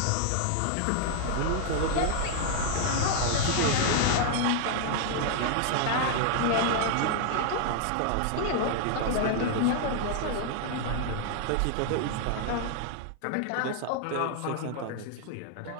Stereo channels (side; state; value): both; different; correlation 0.00